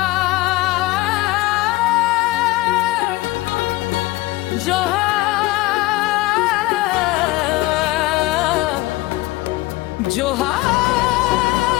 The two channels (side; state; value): right; quieter; 19.3 dB